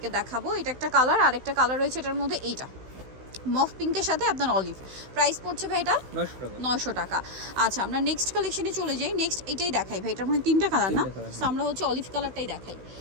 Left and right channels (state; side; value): late; left; 16 ms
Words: দেখাবো। এটা একটা কালার, আর একটা কালার রয়েছে এটার মধ্যে, এইটা মফ পিঙ্কের সাথে আপনার অলিভ। প্রাইস পড়ছে ভাই এটা 900 টাকা। আচ্ছা, আমরা নেক্সট কালেকশনে চলে যাই। নেক্সট এটাই দেখাই ভাই, এটার মধ্যে তিনটা কালার না, সো আমরা হচ্ছে অলিভ কালারটাই দেখাই।